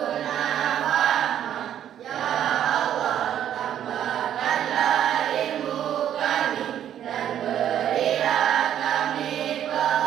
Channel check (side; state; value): left; quieter; 10.4 dB